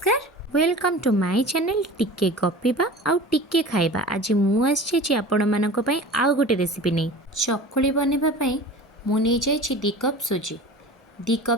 वेलकम टू माय चैनल टिके गपिबा आउ टिके खाइबा। आज मुझे आपण मानक पई आउ गोटे रेसिपी नहीं चकुली बनैबा पई मु नहीं जाइछि 2 कप सुजी 2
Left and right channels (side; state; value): both; normal; correlation 0.37